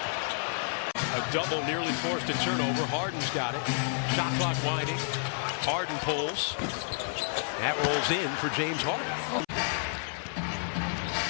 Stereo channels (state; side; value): silent; right; 58 dB below the other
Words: A double nearly forced a turnover. Harden's got it. Shot clock winding. Harden pulls. That rolls in for James Harden.